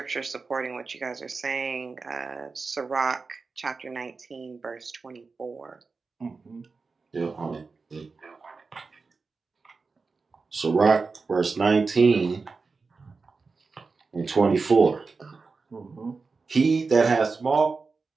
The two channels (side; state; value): left; quieter; 4.4 dB